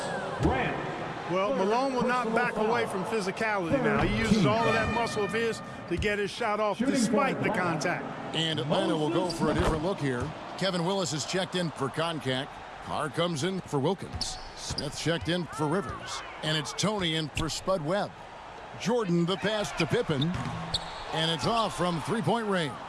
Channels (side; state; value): both; identical; correlation 1.00